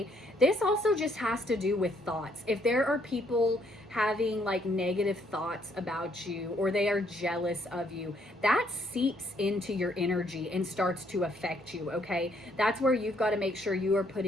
this also just has to do with thoughts. If there are people having like negative thoughts about you or they are jealous of you, that seeps into your energy and starts to affect you, okay? That's where you've got to make sure you are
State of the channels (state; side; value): normal; both; correlation 0.69